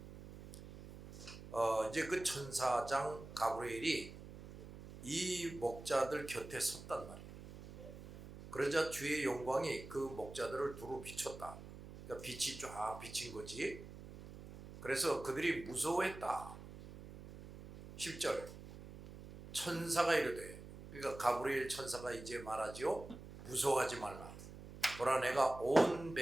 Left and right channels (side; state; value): right; noise; hum, 14 dB below the sound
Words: 이제 그 천사장 가브리엘이 이 목자들 곁에 섰단 말이에요. 그러자 주의 영광이 그 목자들을 두루 비췄다. 그러니까 빛이 쫙 비친 거지. 그래서 그들이 무서워했다. 10절 천사가 이르되, 그러니까 가브리엘 천사가 이제 말하지요. 무서워하지 말라. 보라 내가 온